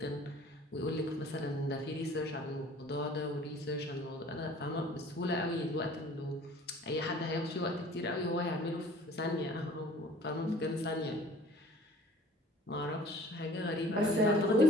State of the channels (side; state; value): both; normal; correlation 0.49